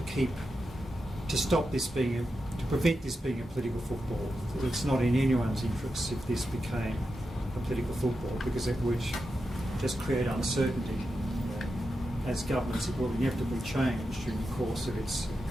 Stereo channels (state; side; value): normal; both; correlation 0.89